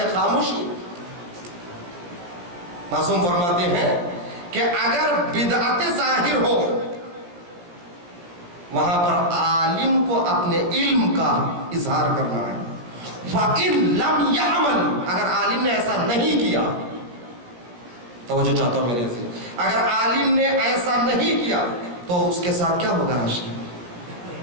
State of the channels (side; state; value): left; late; 17 ms